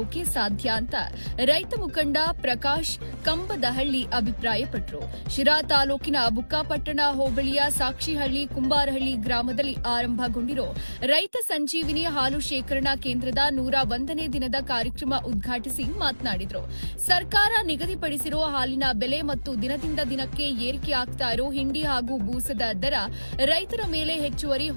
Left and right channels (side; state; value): both; inverted; correlation -1.00